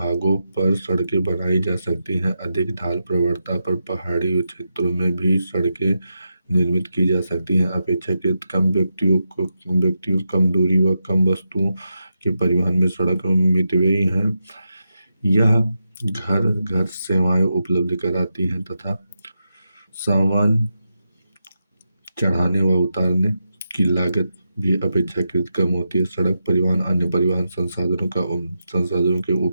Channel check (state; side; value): inverted; both; correlation -0.87